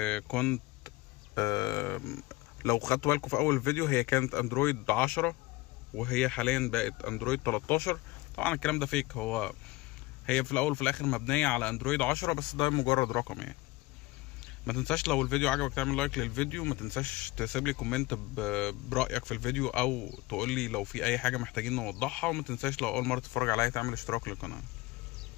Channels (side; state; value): right; quieter; 21.3 dB